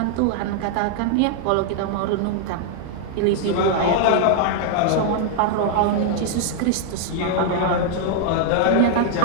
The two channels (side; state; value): both; different; correlation 0.00